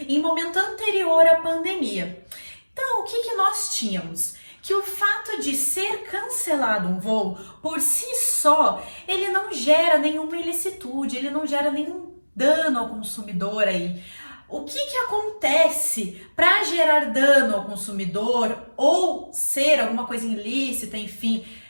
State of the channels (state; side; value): inverted; both; correlation -1.00